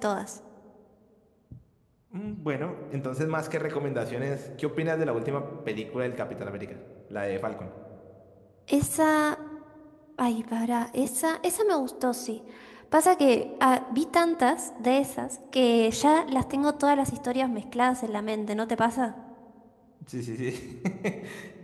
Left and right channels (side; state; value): both; identical; correlation 1.00